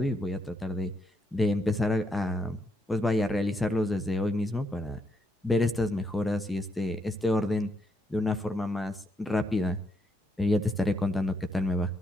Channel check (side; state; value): both; normal; correlation 0.78